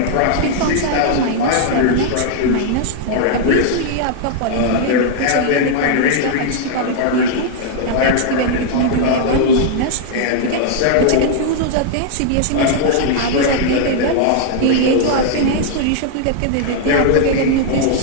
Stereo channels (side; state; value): both; different; correlation -0.01